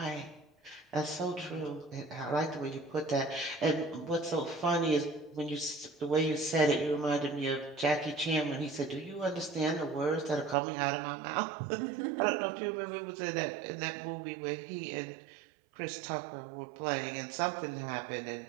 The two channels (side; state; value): left; drops out; at 10.6 s